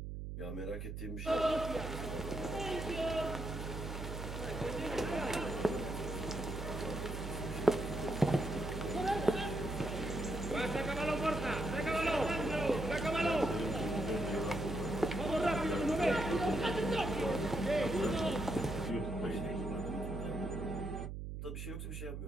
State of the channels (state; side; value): noise; right; hum, 6 dB below the sound